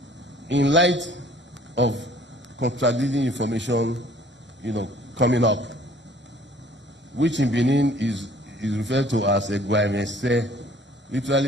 in light of contradicting information, coming up, which in Benin is referred to as a Egwai,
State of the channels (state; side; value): normal; both; correlation 0.55